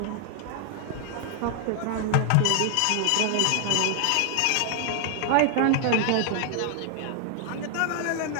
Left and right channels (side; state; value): both; different; correlation 0.00